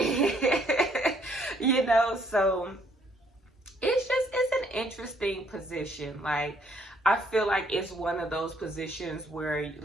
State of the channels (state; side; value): normal; both; correlation 0.66